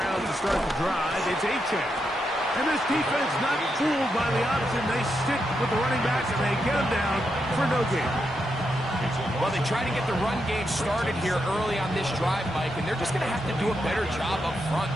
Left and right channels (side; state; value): both; normal; correlation 0.83